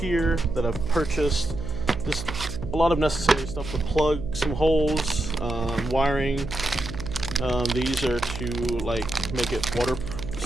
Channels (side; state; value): right; noise; hum, 9 dB below the sound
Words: that I've purchased. Just a lot of necessary stuff to plug some holes, wiring. These are to like make it water